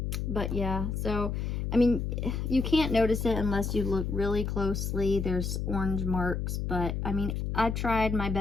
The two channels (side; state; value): left; noise; hum, 2 dB below the sound